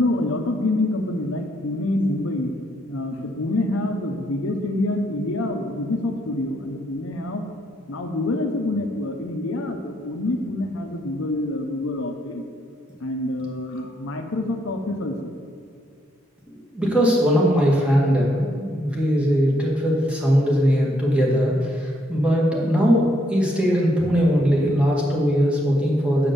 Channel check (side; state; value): both; normal; correlation 0.74